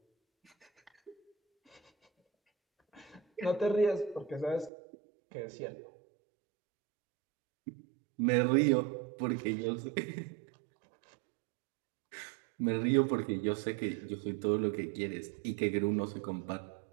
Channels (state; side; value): drops out; left; at 4.7 s